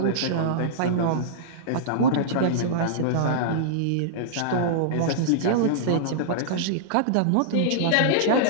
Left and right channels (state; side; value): different; both; correlation -0.02